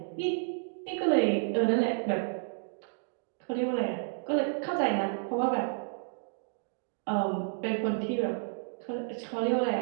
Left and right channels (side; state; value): left; silent; digital silence